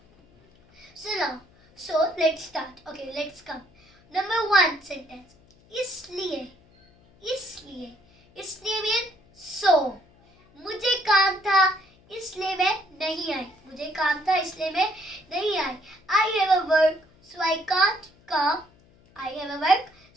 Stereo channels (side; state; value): left; noise; hum, 30 dB below the sound